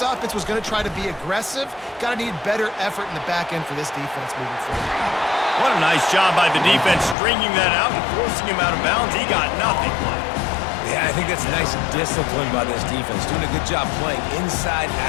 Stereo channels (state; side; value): drops out; right; at 7.2 s